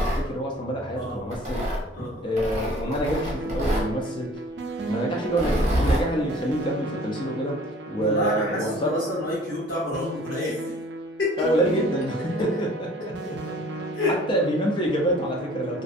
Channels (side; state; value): both; normal; correlation 0.51